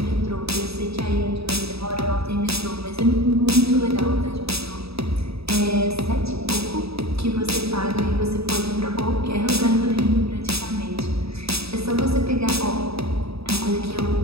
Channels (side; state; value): left; late; 0.78 ms